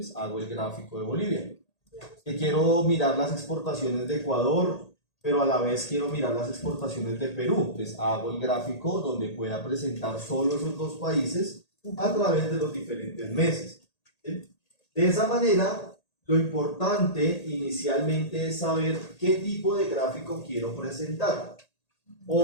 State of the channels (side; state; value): right; late; 1.8 ms